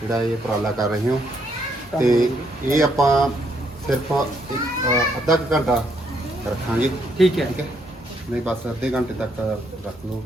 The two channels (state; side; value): normal; both; correlation 0.73